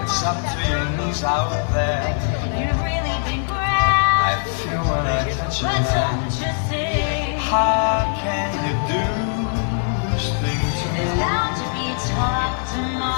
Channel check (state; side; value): silent; right; 61 dB below the other